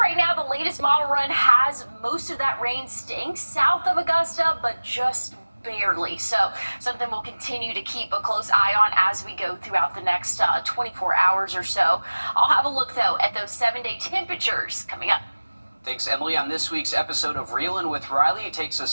now, the latest model run has most of that rain staying south of Augusta, but just barely. So something we'll continue to keep a close eye on as we go throughout the next 24 hours or so. I'll have a look, though, at those 7-day temperatures coming up. Thanks, Emily. On this week's episode of Reelin' with Riley, it takes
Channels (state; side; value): inverted; both; correlation -1.00